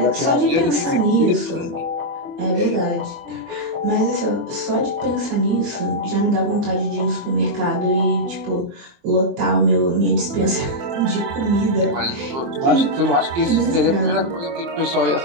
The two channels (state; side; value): late; left; 24 ms